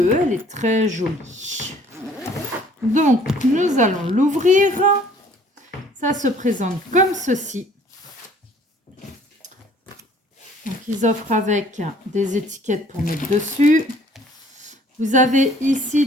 elle est très jolie. Donc, nous allons l'ouvrir. Ça se présente comme ceci. Donc, ils offrent avec des étiquettes pour mettre dessus. Vous avez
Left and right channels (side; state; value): both; normal; correlation 0.56